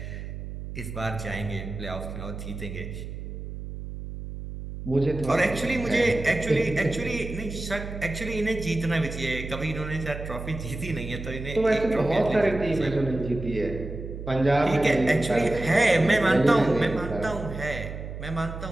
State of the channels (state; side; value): noise; right; hum, 9 dB below the sound